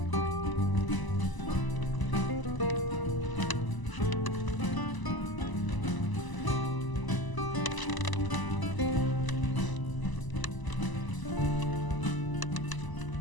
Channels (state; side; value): late; right; 1.0 ms